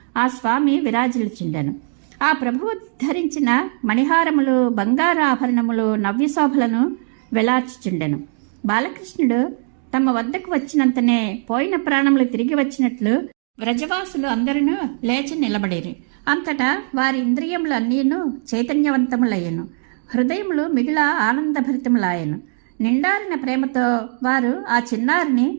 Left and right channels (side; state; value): left; silent; 58 dB below the other